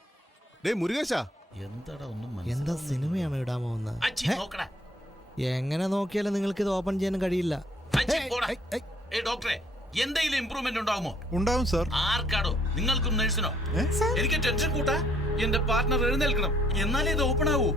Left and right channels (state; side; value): normal; both; correlation 0.65